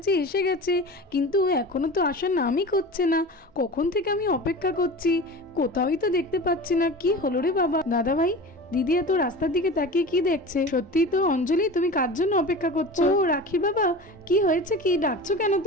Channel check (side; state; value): both; normal; correlation 0.34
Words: এসে গেছে, কিন্তু এখনো তো আসার নামই করছে না। কখন থেকে আমি অপেক্ষা করছি, কোথাওই তো দেখতে পাচ্ছি না। কি হলো রে বাবা? দাদা ভাই, দিদি এত রাস্তার দিকে তাকিয়ে কি দেখছে? সত্যি তো অঞ্জলি, তুমি কার জন্য অপেক্ষা করছো? ও রাখি বাবা, কি হয়েছে, কি ডাকছো কেন